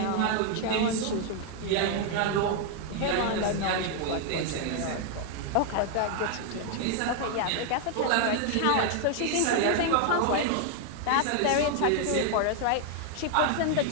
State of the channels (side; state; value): both; different; correlation 0.00